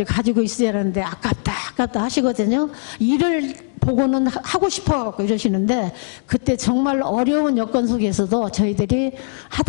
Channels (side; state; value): right; silent; digital silence